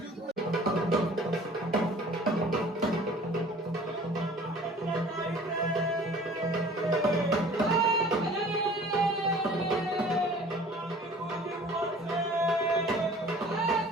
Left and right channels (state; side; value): normal; both; correlation 0.48